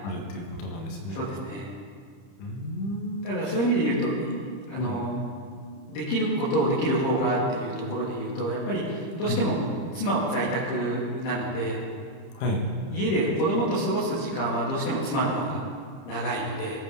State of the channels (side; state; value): right; late; 30 ms